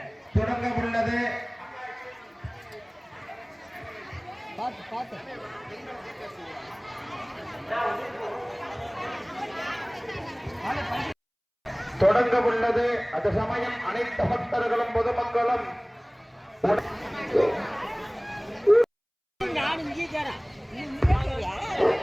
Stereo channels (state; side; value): identical; both; correlation 1.00